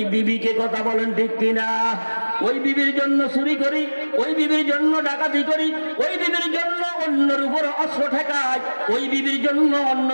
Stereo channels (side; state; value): both; inverted; correlation -1.00